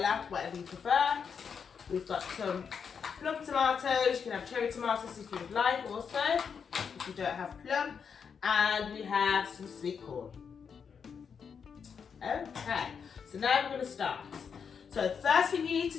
whatever you prefer. We've got some plum tomatoes. You can have cherry tomatoes if you would like also, if you don't have plum. And we have some sweet corn. Okay, so now we're going to start. So the first thing you need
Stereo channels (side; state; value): right; quieter; 6.5 dB